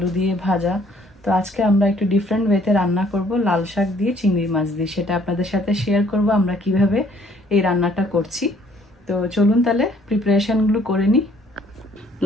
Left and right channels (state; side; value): normal; both; correlation 0.61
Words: দিয়ে ভাজা। তো আজকে আমরা একটু ডিফারেন্ট ওয়েতে রান্না করব, লাল শাক দিয়ে চিংড়ি মাছ দিয়ে। সেটা আপনাদের সাথে শেয়ার করব আমরা কিভাবে এই রান্নাটা করছি। তো চলুন তাহলে প্রিপারেশনগুলো করে নিই।